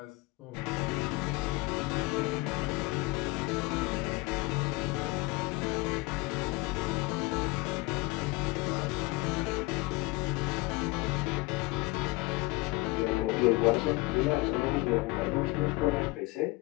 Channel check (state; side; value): quieter; right; 22.7 dB